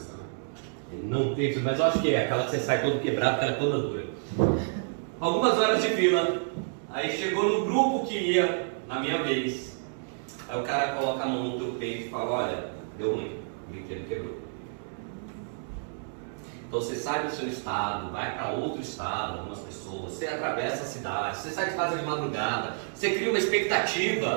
né? Não tem, mas eu acho que é aquela que você sai todo quebrado, ela é toda dura. Algumas horas de fila. Aí chegou no grupo que ia na minha vez. Aí o cara coloca a mão no teu peito e fala: olha, deu ruim, o brinquedo quebrou. Então você sai do seu estado, vai para outro estado, algumas pessoas, você atravessa a cidade, você sai de casa de madrugada, você cria uma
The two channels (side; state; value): left; silent; digital silence